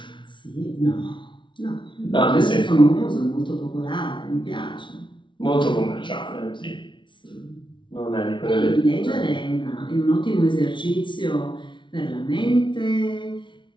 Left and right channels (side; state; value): right; late; 0.24 ms